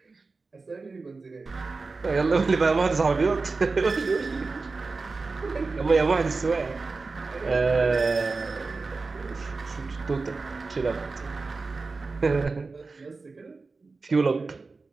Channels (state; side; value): quieter; left; 4.0 dB